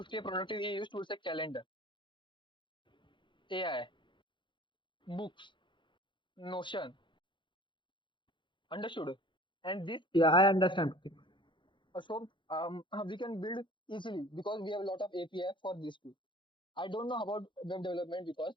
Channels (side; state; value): right; late; 0.23 ms